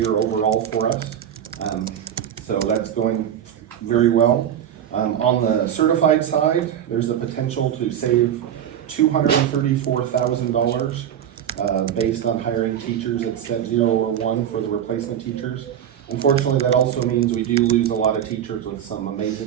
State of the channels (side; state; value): left; quieter; 9.9 dB